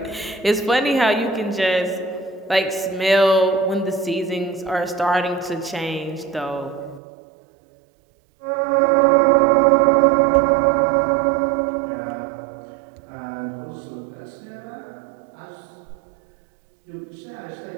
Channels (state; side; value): drops out; left; at 7.0 s